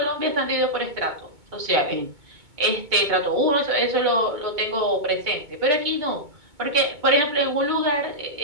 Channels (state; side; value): late; left; 2.2 ms